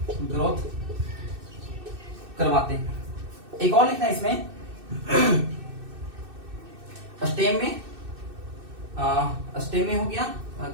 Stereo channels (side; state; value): left; late; 2.6 ms